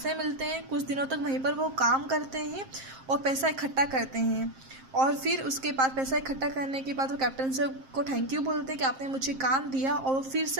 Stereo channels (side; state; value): left; late; 7.6 ms